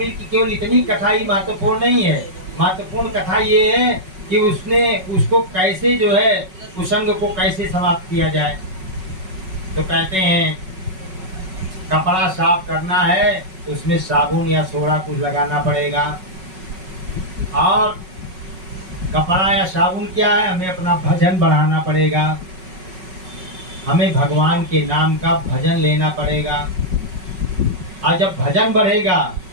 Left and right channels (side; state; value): left; late; 5.4 ms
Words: की केवल इतनी कथा ही महत्वपूर्ण नहीं है। महत्वपूर्ण कथा ये है कि उसने उसको कैसे जो है कुसंग को कैसे समाप्त किया जाए। तो कहते हैं कपड़ा साफ करना है तो उसमें साबुन या सोडा कुछ लगाना पड़ेगा। और कपड़ा या साबुन क्या है, हमें अपना भजन बढ़ाना पड़ेगा, हमें भगवान के नाम का भजन लेना पड़ेगा। और जब भजन बढ़ेगा